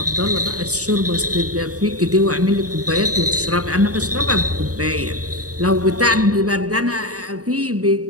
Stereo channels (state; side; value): late; left; 0.67 ms